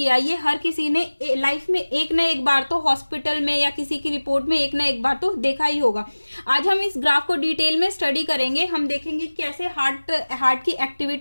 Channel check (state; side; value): inverted; both; correlation -1.00